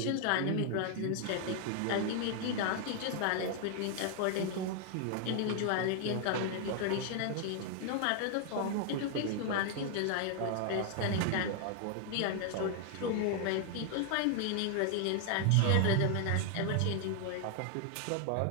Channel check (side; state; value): both; different; correlation 0.00